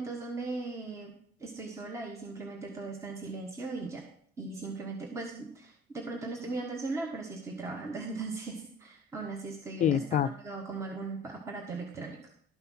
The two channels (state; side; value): normal; both; correlation 0.46